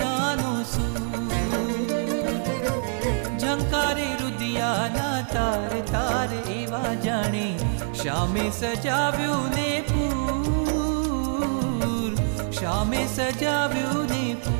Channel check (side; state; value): left; silent; digital silence